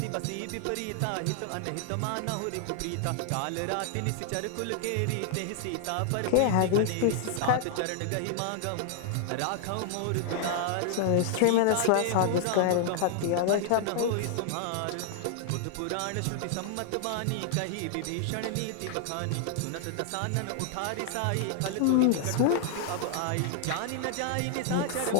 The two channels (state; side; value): different; both; correlation -0.01